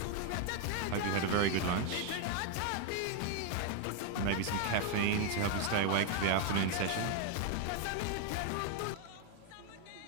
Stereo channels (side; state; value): both; different; correlation 0.01